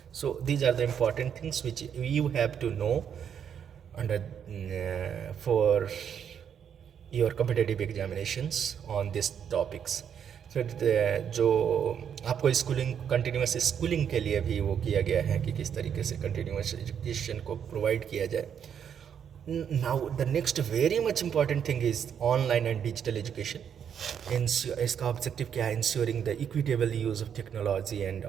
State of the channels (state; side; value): quieter; left; 8.2 dB